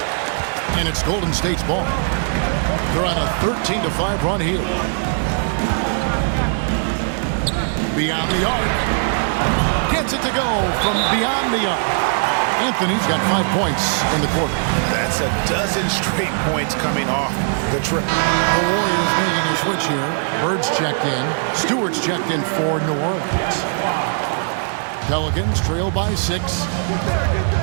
And it's Golden State's ball. They're on a 13-5 run here. Beyond the arc. Gets it to go from beyond the arc. Anthony's got 5 points in the quarter. That's a dozen straight points coming off the trip. The Warriors making a switch here. Bird's checked in. Stewart's checked in for New Orleans. Pelicans trail by 6.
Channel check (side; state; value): left; silent; digital silence